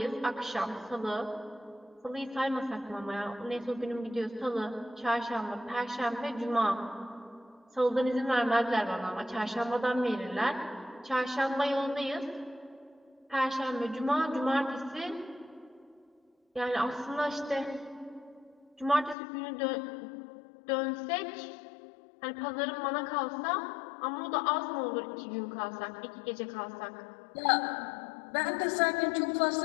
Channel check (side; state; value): right; drops out; at 19.2 s